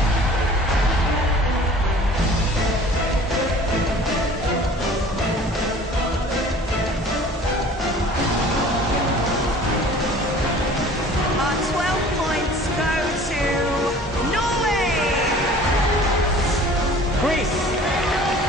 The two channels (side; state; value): both; normal; correlation 0.47